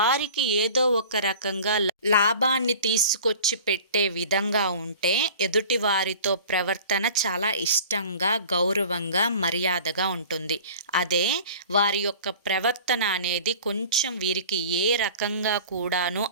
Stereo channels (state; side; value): inverted; both; correlation -0.42